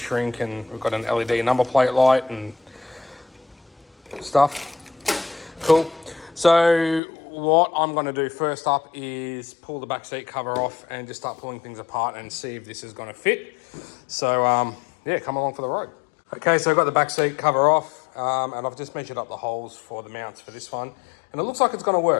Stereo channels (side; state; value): right; drops out; at 7.0 s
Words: and we've got an LED number plate light and stuff. Cool. So what I'm going to do first up is pull the back seat cover off and just start pulling things apart and see if this is going to fit. So yeah, come along for the ride. Okay, so I've got the back seat cover off and I've just measured up the holes for the mounts for this one, and it looks like it's going to